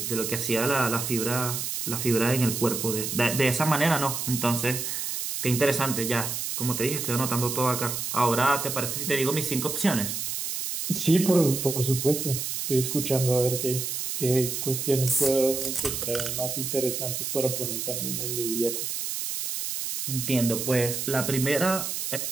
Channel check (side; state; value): right; noise; hiss, 3 dB below the sound